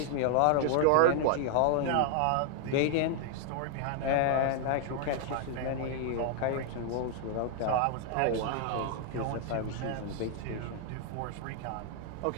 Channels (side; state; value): both; different; correlation 0.00